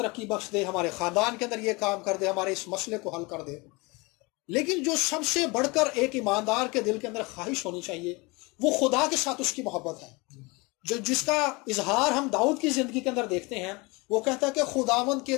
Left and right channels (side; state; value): right; quieter; 26.0 dB